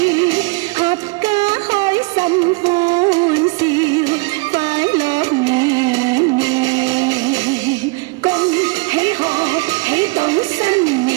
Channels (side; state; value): left; quieter; 28.6 dB